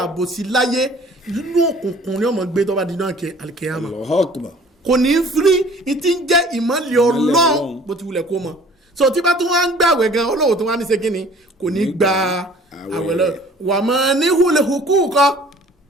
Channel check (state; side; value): normal; both; correlation 0.51